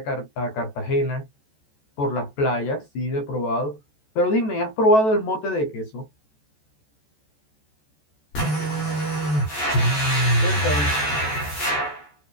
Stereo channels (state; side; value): late; right; 14 ms